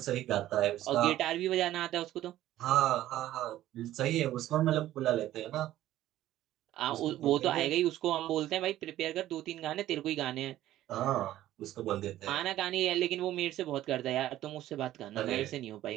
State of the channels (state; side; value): quieter; left; 13.8 dB